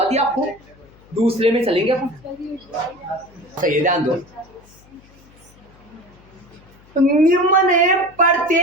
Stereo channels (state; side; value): noise; left; hum, 27 dB below the sound